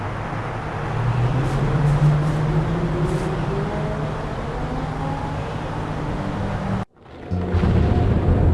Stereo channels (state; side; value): identical; both; correlation 1.00